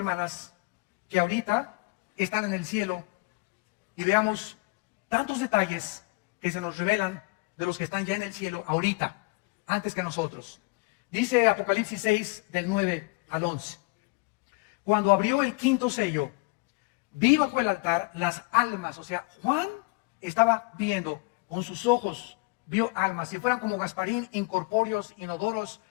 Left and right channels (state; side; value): quieter; right; 27.7 dB